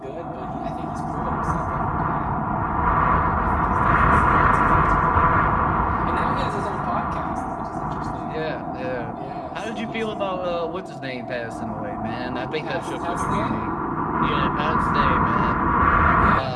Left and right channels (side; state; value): both; identical; correlation 1.00